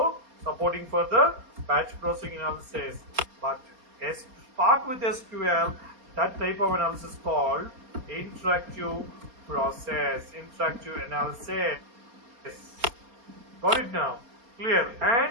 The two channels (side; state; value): left; late; 4.3 ms